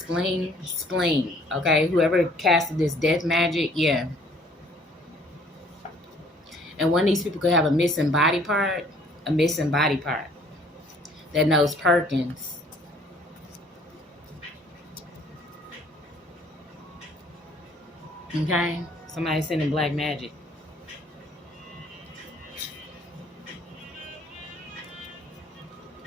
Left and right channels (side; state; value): both; normal; correlation 0.58